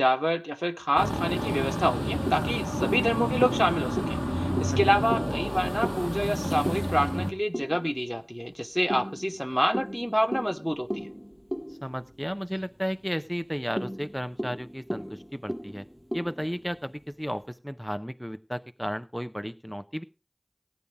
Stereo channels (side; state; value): both; identical; correlation 1.00